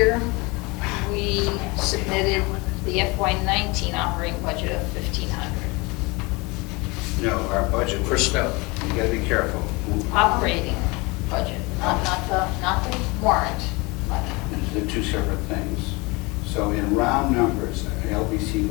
we submitted the FY19 operating budget of 1,500. No, our budget. For snow. You gotta be careful. Operating budget, not the warrant money. They're two separate things. So in round numbers, the LBC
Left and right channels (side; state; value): right; quieter; 25.9 dB